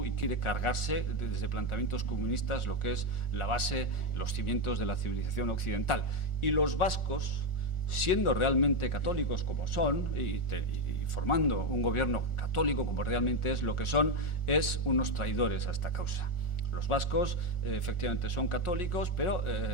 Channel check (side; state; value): right; late; 1.4 ms